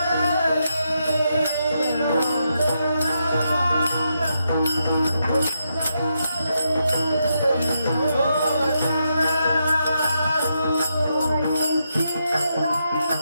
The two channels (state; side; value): inverted; both; correlation -0.82